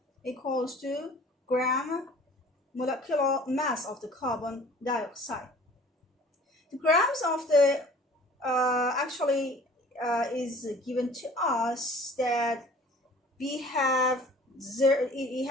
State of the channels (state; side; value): normal; both; correlation 0.48